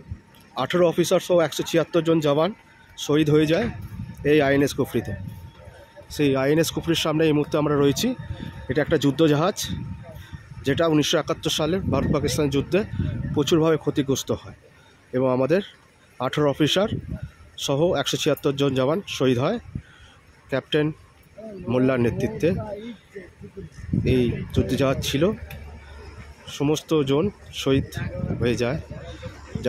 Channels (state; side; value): identical; both; correlation 1.00